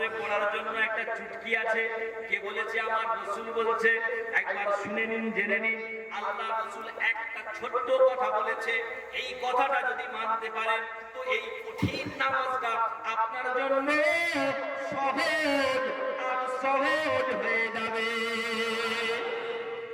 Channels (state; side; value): identical; both; correlation 1.00